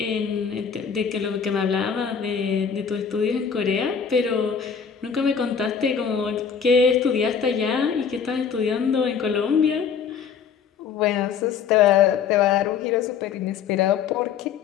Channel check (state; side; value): quieter; right; 6.9 dB